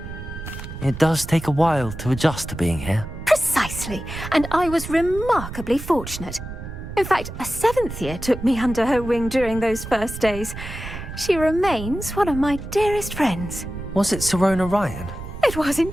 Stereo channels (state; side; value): noise; right; rumble, 10 dB below the sound